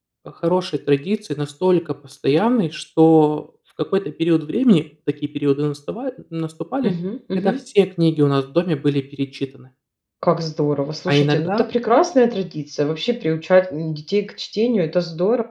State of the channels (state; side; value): identical; both; correlation 1.00